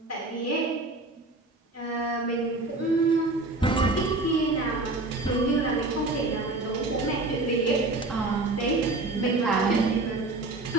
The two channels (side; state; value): left; quieter; 3.1 dB